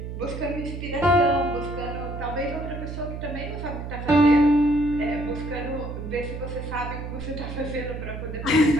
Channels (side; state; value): right; noise; hum, 7 dB below the sound